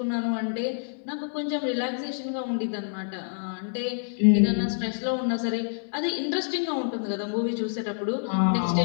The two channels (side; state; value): right; silent; digital silence